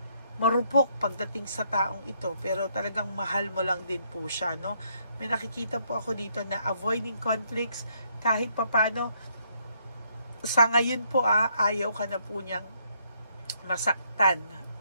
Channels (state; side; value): inverted; both; correlation -0.71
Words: marupok pagdating sa taong ito, pero talagang mahal mo lang din po siya, no? May nakikita po ako dito na avoiding conflicts kahit papano sa ngayon po ayaw ka na po niyang masaktan,